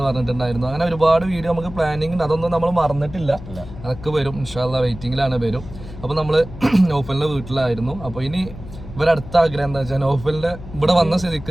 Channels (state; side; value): noise; left; hum, 14 dB below the sound